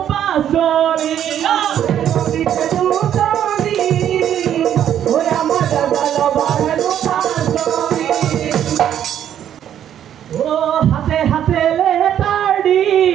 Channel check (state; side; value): quieter; left; 10.2 dB